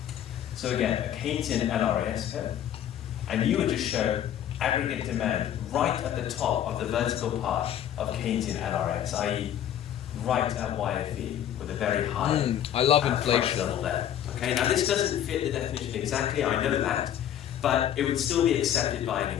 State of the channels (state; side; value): quieter; right; 10.6 dB